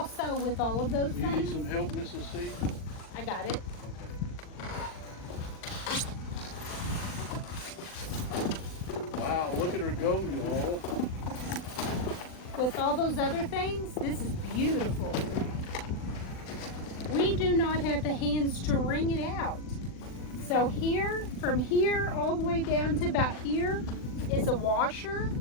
with all of those Do you things. need some help, Mrs. C? I got it. Okay. Wow, look at her go, y'all. with all those other things, this is beautiful. We do not have the hands to wring it out. So here, from here all the way down to about here is a washer.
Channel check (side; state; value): right; late; 39 ms